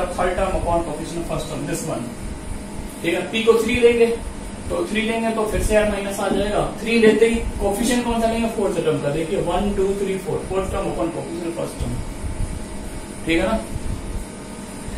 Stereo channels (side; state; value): both; identical; correlation 1.00